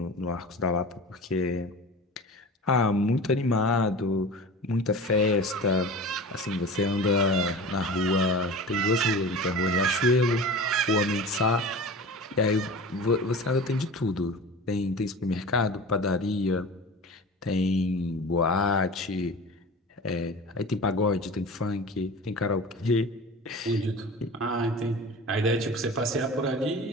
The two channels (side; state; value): both; normal; correlation 0.35